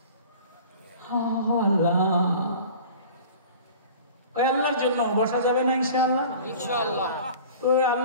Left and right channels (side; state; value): both; inverted; correlation -0.43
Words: আল্লাহ ওই আল্লাহর জন্য বসা যাবে না ইনশাআল্লাহ? ইনশাআল্লাহ। তো